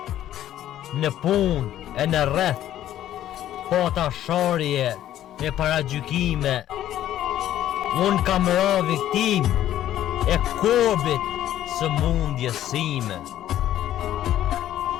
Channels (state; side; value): quieter; right; 12.3 dB